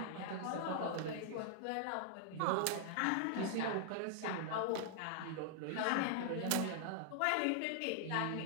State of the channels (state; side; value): different; both; correlation -0.01